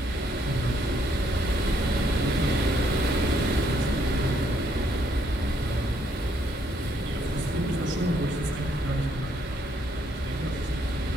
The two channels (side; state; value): both; normal; correlation 0.71